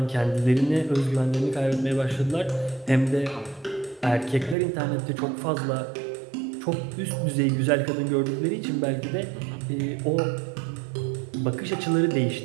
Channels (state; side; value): drops out; left; at 4.5 s